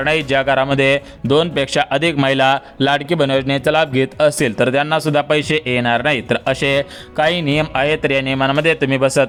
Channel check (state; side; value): identical; both; correlation 1.00